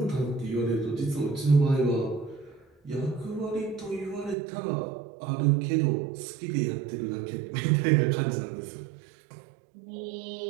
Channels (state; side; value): drops out; left; at 4.4 s